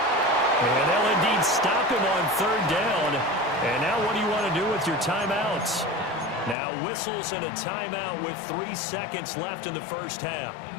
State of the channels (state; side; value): drops out; right; at 6.6 s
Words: And they'll indeed stop him on 3rd down. And now what do you want to do with your timeouts? Now whistles and a timeout with 3 seconds left in the first half.